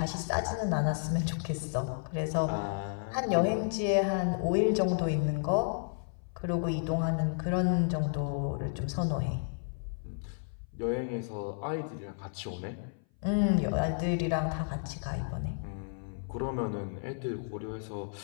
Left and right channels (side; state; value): right; silent; 56 dB below the other